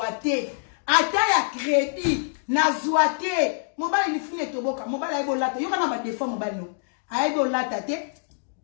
ata ya crédit na zwate mobali ni fune toboka mobali aibo lata yo kana ba défaut mobali no aibo lata te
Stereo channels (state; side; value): silent; right; digital silence